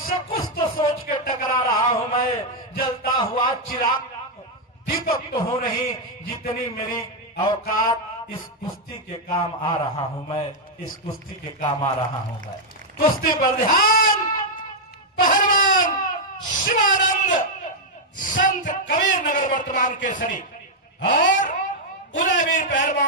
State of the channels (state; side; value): normal; both; correlation -0.02